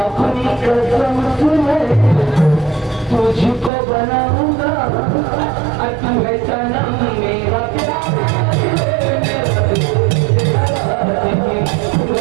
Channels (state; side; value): drops out; left; at 3.7 s